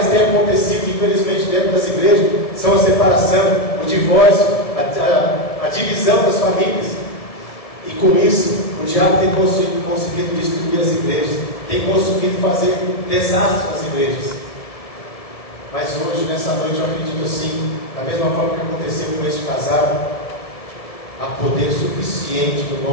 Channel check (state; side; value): late; right; 1.6 ms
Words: tem acontecido, infelizmente, dentro das igrejas, são a separação, o divórcio, a divisão das famílias. E com isso, o diabo tem conseguido destruir as igrejas, tem conseguido fazer desastres nas igrejas. Mas hoje, nessa noite, eu acredito assim, da mesma forma que aconteceu com este casal, há poder suficiente no